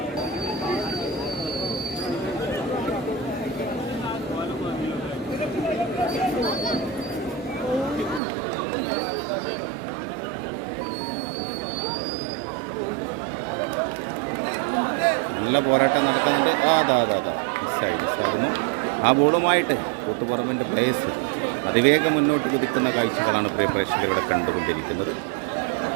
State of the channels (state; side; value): drops out; left; at 8.2 s